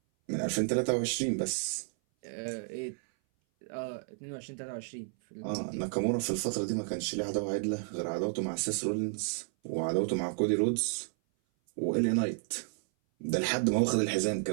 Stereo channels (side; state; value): left; silent; 56 dB below the other